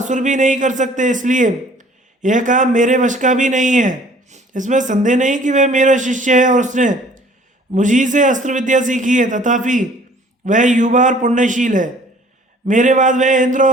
भी नहीं कर सकते, इसलिए यह काम मेरे वश का भी नहीं है। इसमें संदेह नहीं कि वह मेरा शिष्य है और उसने मुझी से अस्त्र विद्या सीखी है, तथापि वह युवा और पुण्यशील है। मेरे बाद वह इंद्र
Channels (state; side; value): normal; both; correlation 0.53